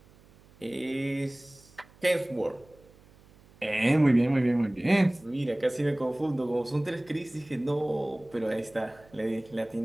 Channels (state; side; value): noise; right; hum, 27 dB below the sound